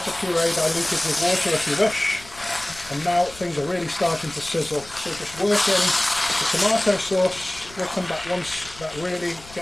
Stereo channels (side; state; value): left; noise; rumble, 20 dB below the sound